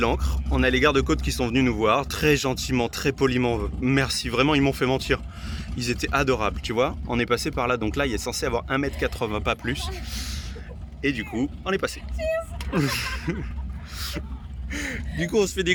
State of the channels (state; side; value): identical; both; correlation 1.00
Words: On a les gardes-côtes qui sont venus nous voir, très gentiment, très poliment. Merci, vraiment ils m'ont fait mentir. Ils étaient adorables, tu vois. On est passé par là, donc là il est censé avoir 1,80 m, pas plus. Et du coup, on est passé. Du coup, on se fait des